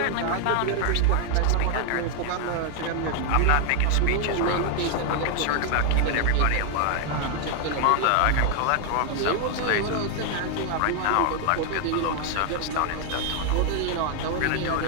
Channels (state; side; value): different; both; correlation 0.00